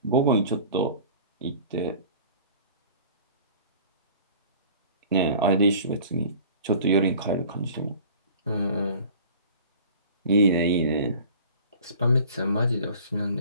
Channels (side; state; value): both; inverted; correlation -0.46